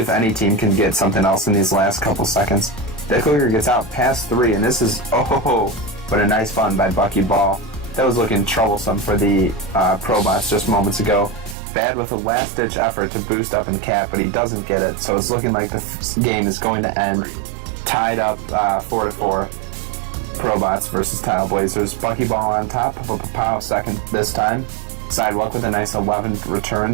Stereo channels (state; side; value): drops out; left; at 11.6 s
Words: any team can get something else in these last couple seconds. Dick Licker gets out past 3, and this is, but a nice fun by Buckyball. That was looking troublesome for the ProBots just moments ago. Bad with a last-ditch effort to boost up and cap, but he doesn't get it, so it's looking like the game is going to end tied up 4-4. ProBots versus Tile Blazers. Buckyball on top, Pow second this time. Sidewalk with a nice 11